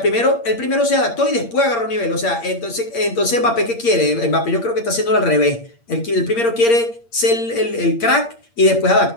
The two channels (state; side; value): late; right; 8.6 ms